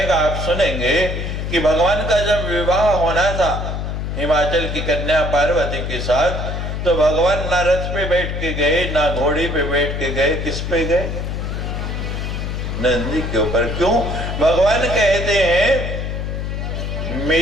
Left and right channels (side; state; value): left; noise; hum, 3 dB below the sound